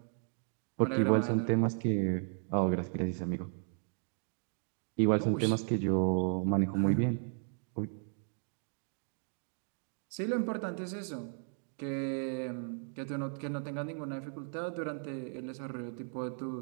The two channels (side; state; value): left; silent; 54 dB below the other